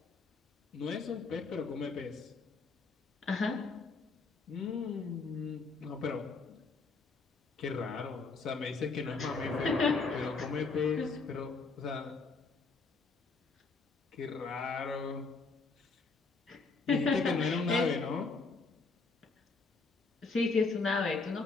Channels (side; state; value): right; quieter; 4.2 dB